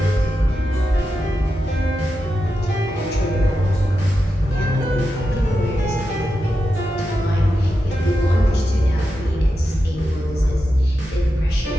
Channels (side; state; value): both; normal; correlation 0.89